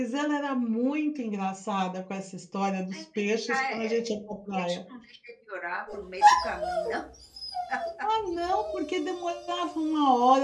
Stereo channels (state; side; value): identical; both; correlation 1.00